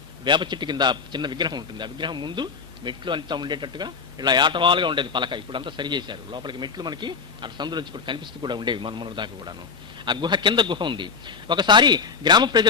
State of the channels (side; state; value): right; quieter; 5.5 dB